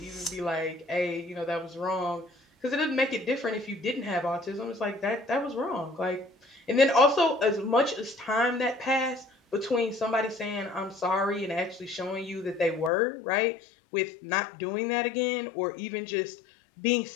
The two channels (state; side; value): drops out; right; at 12.9 s